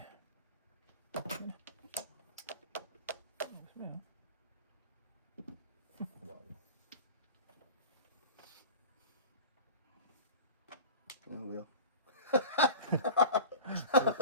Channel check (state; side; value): inverted; both; correlation -0.37